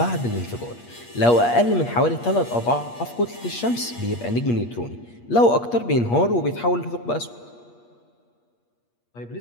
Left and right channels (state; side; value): late; right; 8.5 ms